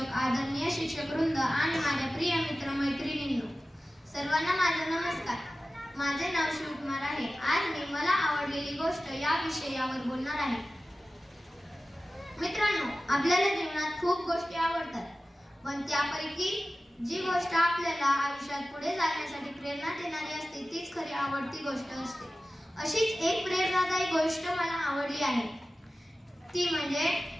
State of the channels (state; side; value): normal; both; correlation 0.95